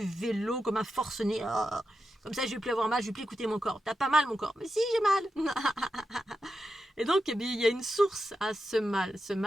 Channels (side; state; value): both; normal; correlation 0.89